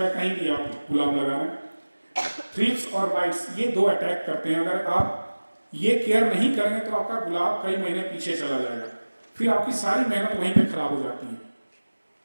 कहीं भी आप गुलाब लगा रहे हैं। थ्रिप्स और माइट्स ये 2 अटैक करते हैं। अगर आप ये केयर नहीं करेंगे तो आपका गुलाब कई महीने पीछे चला जाएगा, फिर आपकी सारी मेहनत वहीं पे खराब हो जाती है।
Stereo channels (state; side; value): inverted; both; correlation -1.00